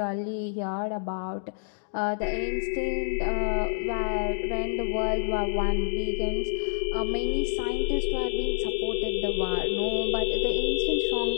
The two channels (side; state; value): right; silent; digital silence